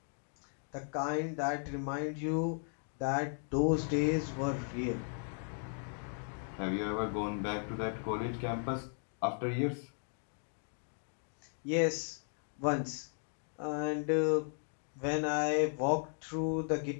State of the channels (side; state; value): right; silent; 54 dB below the other